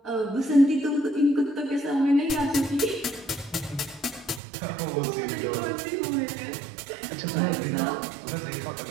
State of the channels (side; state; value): left; drops out; at 4.4 s